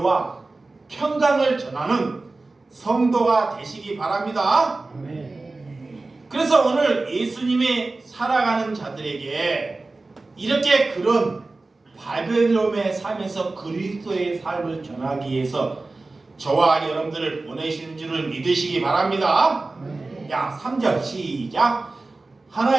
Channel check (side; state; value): left; quieter; 3.3 dB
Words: 평강을 전하는 성도가 되시기 바랍니다. 그래서 오늘 예수님이 살아가는 자들에게 이렇게 그런 바벨론의 삶에서 그리스도의 삶을 전하기 위해서 저와 여러분들을 보내시는 줄을 믿으시기 바랍니다. 야, 3절 시작.